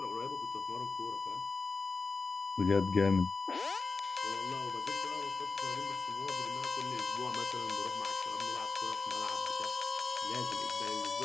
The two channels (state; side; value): quieter; right; 4.2 dB